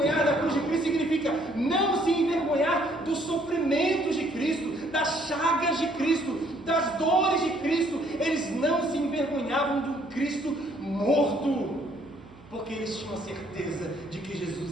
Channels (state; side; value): noise; right; hum, 25 dB below the sound